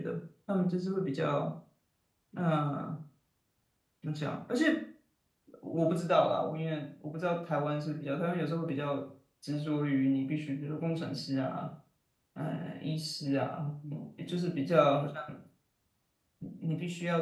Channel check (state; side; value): identical; both; correlation 1.00